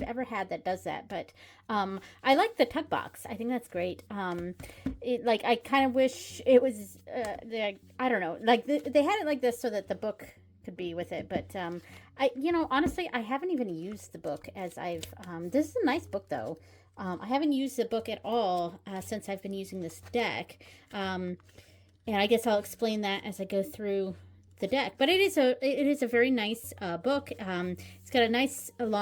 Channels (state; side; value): identical; both; correlation 1.00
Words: ever had that does that, but I like the tuck box. I think that's great. I kind of wish it was, I don't know, like they had it like this so that the book could be with it, but honestly, I haven't even used the book as this is a nice book though. I haven't used the book at all since I've been using this deck, and I guess I'll explain that as I go through the deck. But it is a very nice book. It's got a nice